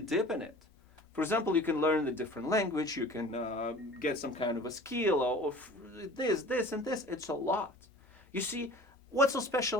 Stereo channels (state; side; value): normal; both; correlation 0.44